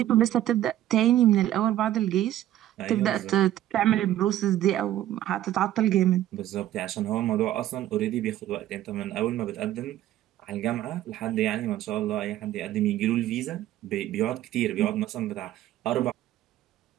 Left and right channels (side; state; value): left; quieter; 13.2 dB